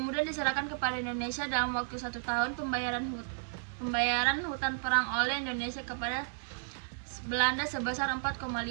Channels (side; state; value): left; silent; 56 dB below the other